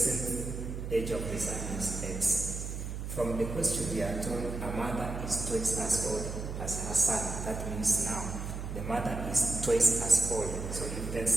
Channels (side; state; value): right; noise; hum, 5 dB below the sound